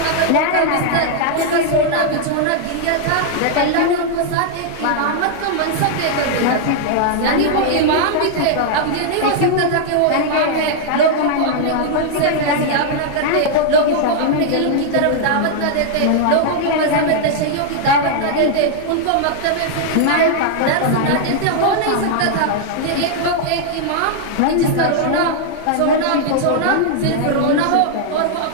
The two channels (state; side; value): different; both; correlation -0.01